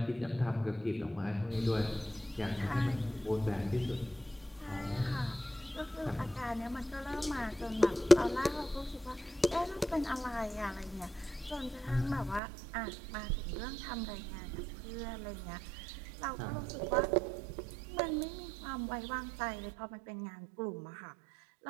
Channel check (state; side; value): drops out; left; at 12.4 s